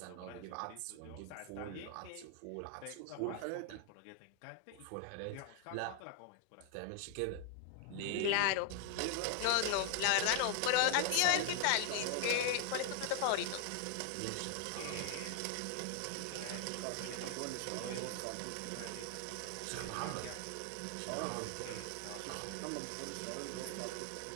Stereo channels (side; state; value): both; different; correlation 0.00